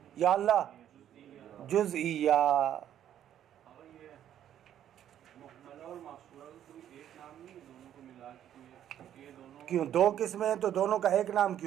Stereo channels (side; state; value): left; quieter; 10.7 dB